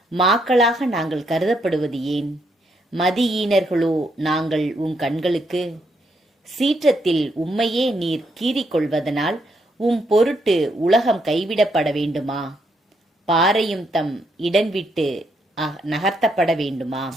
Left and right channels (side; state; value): both; normal; correlation 0.76